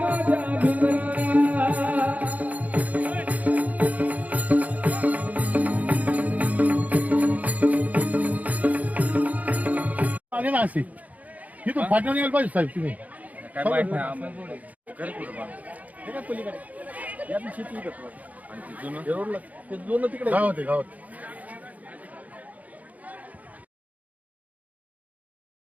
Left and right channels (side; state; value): left; late; 0.075 ms